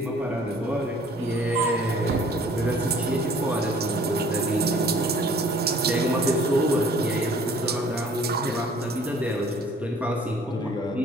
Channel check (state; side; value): normal; both; correlation 0.54